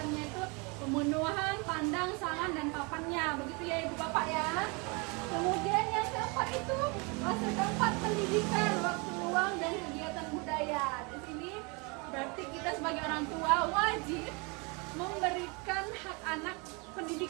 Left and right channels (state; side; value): quieter; left; 30.4 dB